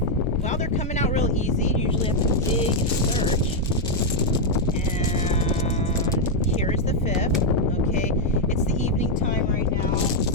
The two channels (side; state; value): both; normal; correlation 0.00